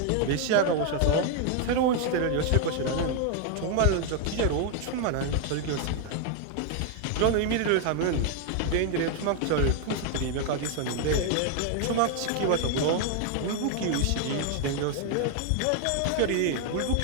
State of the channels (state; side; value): different; both; correlation 0.01